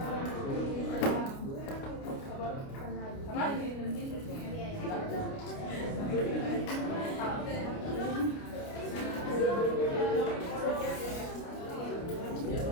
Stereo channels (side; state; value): right; late; 29 ms